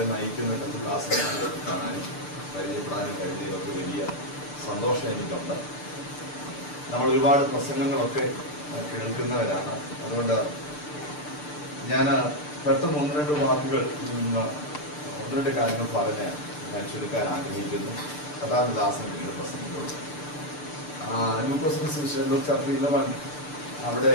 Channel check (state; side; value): late; right; 6.7 ms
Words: നയിക്കുന്ന കർത്തൃദാസന്മാരെ കാണാനും പരിചയപ്പെടാനും കഴിഞ്ഞതിലൊക്കെ വലിയ സന്തോഷം എനിക്കുണ്ട്. നമ്മൾ ഒരുപാട് പ്രസംഗങ്ങളൊക്കെ കേൾക്കുന്നവരാണ്. അതുകൊണ്ട് ഞാൻ പെട്ടെന്ന് ഒന്ന് രണ്ട് വാക്കുകൾ ഒന്ന് രണ്ട് കാര്യങ്ങൾ പറഞ്ഞ് ഞാൻ ചുരുക്കാൻ ആഗ്രഹിക്കുന്നു. കഥാദാസൻ പിന്നീട് പ്രസംഗിക്കുള്ളൂ. ലൂക്കോസ് ചാപ്റ്റർ 11